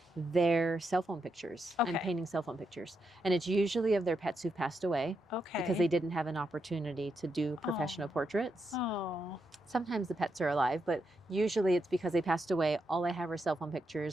their cell phone pictures. Okay. I'm painting cell phone pictures. And it's usually of their pets who've passed away. Okay. Because they didn't have an opportunity to do professional portraits. Oh. Sometimes the pets are alive, but usually it's because they passed away. All I have are cell phone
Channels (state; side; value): normal; both; correlation 0.83